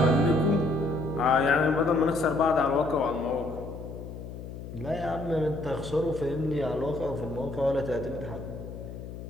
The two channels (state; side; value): noise; left; hum, 11 dB below the sound